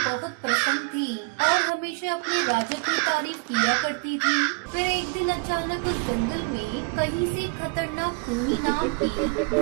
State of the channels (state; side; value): quieter; left; 34.2 dB